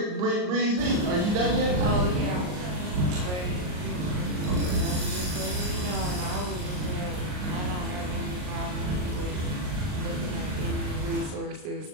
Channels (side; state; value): left; late; 39 ms